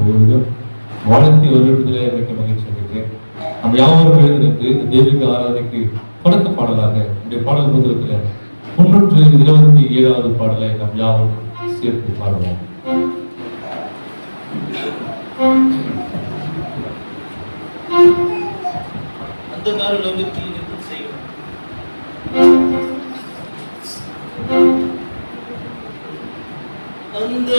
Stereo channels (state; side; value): inverted; both; correlation -1.00